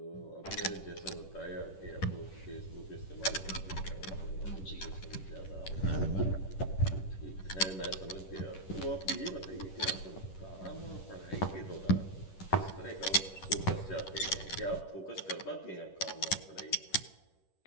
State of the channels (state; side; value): late; right; 11 ms